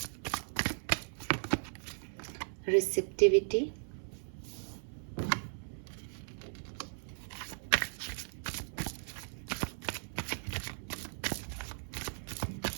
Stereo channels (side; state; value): left; silent; 53 dB below the other